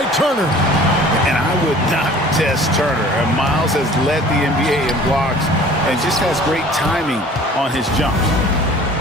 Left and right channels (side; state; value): both; normal; correlation 0.48